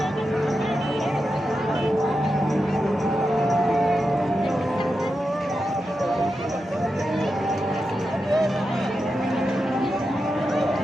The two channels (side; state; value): both; normal; correlation 0.89